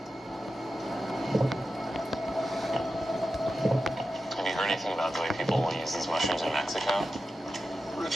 Have you heard anything about the way people will use these mushrooms in Mexico? Rich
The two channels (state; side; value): normal; both; correlation 0.91